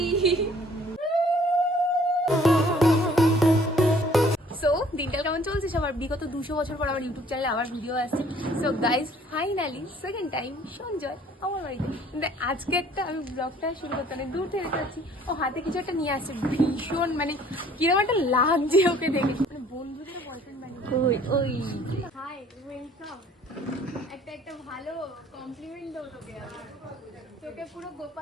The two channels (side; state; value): both; normal; correlation 0.56